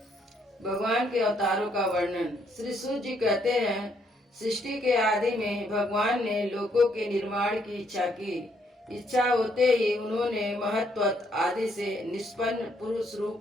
भगवान के अवतारों का वर्णन। श्री सूत जी कहते हैं, सृष्टि के आदि में भगवान ने लोकों के निर्माण की इच्छा की। इच्छा होते ही उन्होंने महत्त्व आदि से निष्पन्न पुरुष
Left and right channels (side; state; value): both; normal; correlation 0.71